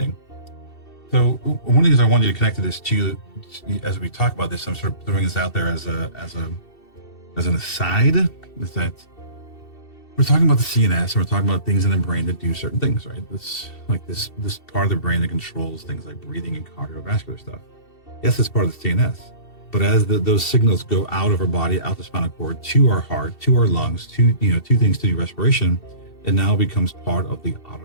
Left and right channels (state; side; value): late; right; 2.7 ms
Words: So one of the things I wanted you to connect to this too, as we talk about this, I'm sort of throwing this out there as an aside, is that we're talking about the CNS, and we're talking about things in the brain that do certain things, right? This part of the brain that controls things like breathing and cardiovascular stuff. Yes, it's part of the CNS, but as those signals go out of our body, out the spinal cord, to our heart, to our lungs, to things to do respiration, it now becomes part of the